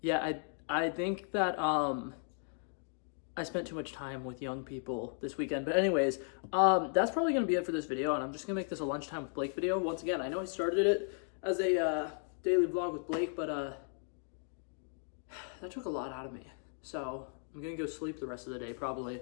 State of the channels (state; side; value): silent; right; 54 dB below the other